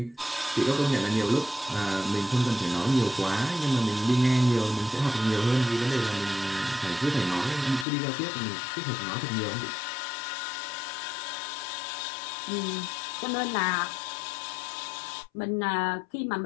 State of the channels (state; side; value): drops out; right; at 7.9 s